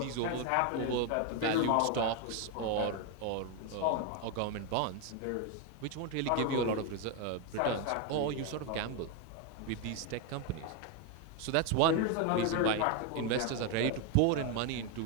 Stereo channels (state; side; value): different; both; correlation 0.01